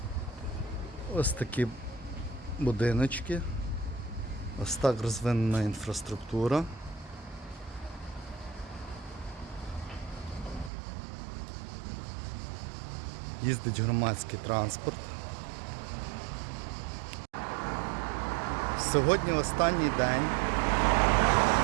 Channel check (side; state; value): left; drops out; at 10.7 s